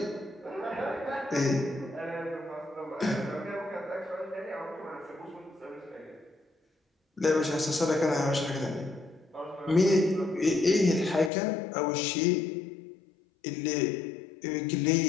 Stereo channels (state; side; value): drops out; right; at 11.3 s